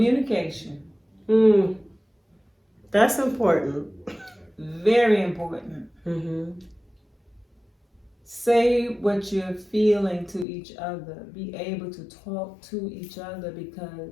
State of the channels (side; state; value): right; drops out; at 10.5 s